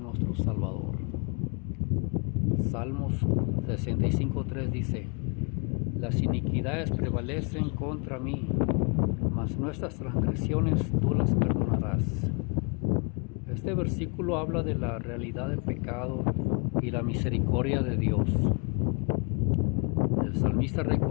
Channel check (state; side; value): quieter; right; 34.3 dB